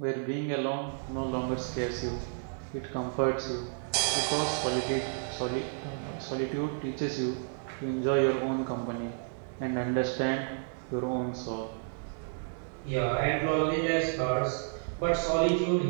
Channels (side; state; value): left; silent; digital silence